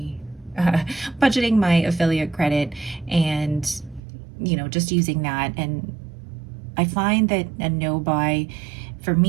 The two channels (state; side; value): drops out; left; at 4.0 s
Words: affiliate credit and just using that. And I find that a no buy for